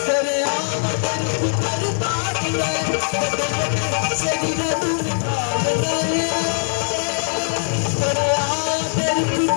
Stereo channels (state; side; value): silent; right; 55 dB below the other